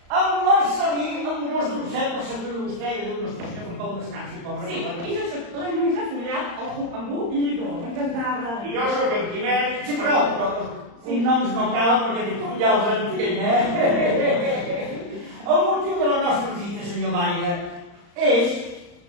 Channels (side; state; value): left; late; 34 ms